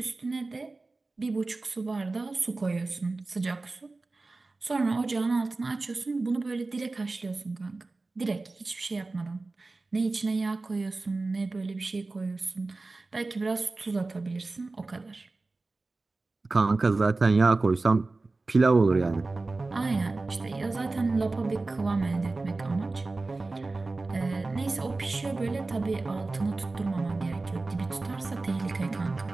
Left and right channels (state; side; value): quieter; left; 3.4 dB